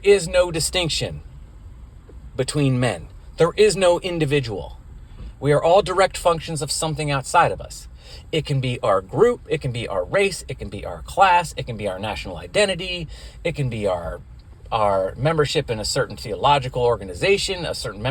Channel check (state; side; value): identical; both; correlation 1.00